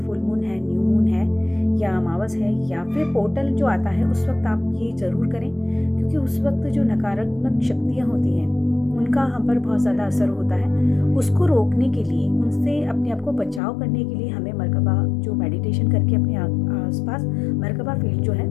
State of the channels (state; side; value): drops out; right; at 13.6 s